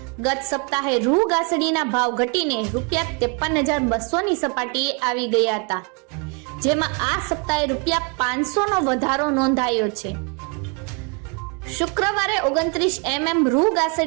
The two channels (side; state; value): left; quieter; 33.4 dB